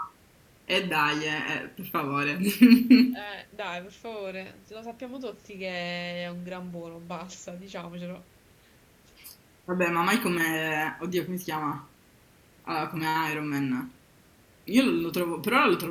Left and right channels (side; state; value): both; identical; correlation 1.00